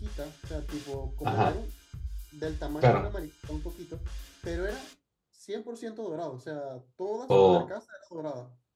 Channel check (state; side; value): identical; both; correlation 1.00